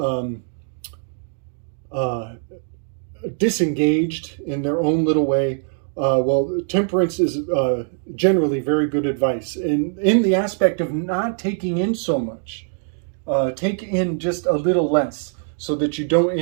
disengaged in their own little way. Well, temperance is generally very good advice. And in the aspect of not taking in so much, take in just a little less so that you don't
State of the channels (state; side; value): silent; left; digital silence